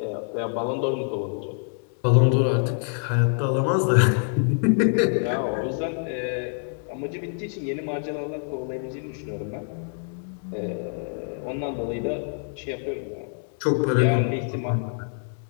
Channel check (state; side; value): silent; right; 61 dB below the other